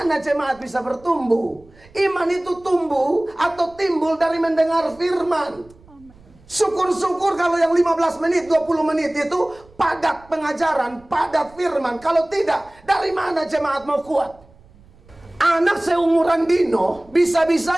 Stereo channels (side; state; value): right; noise; rumble, 27 dB below the sound